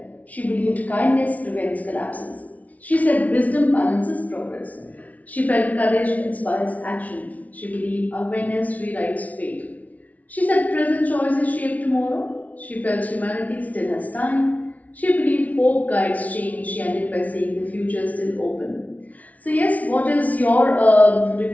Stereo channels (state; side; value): late; right; 0.071 ms